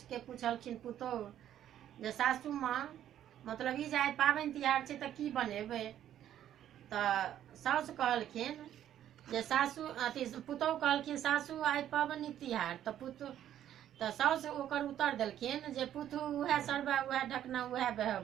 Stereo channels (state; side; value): quieter; left; 11.1 dB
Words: पुछलखिन पुतोहु जे सासू माँ मतलब ई जे आइ पाबनि तिहार छै तऽ की बनेबै? तऽ साउस कहलखिन जे सासू अथी पुतोहु कहलखिन सासू आइ पाबनि तिहार। तऽ साउस ओकर उत्तर देलखिन जे पुतहु उएह सरबा उएह ढकना उएह